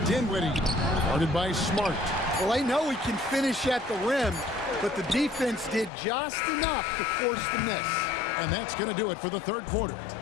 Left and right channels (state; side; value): drops out; right; at 5.9 s